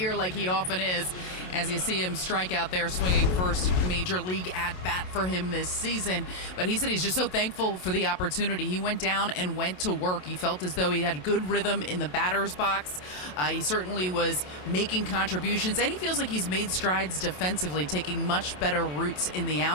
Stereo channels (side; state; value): right; late; 27 ms